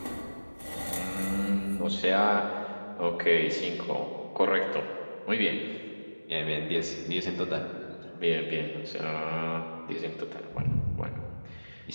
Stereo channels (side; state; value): both; inverted; correlation -1.00